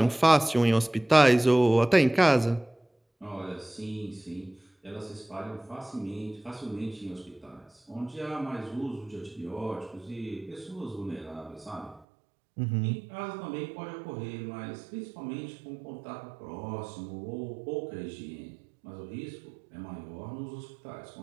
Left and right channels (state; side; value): drops out; left; at 12.0 s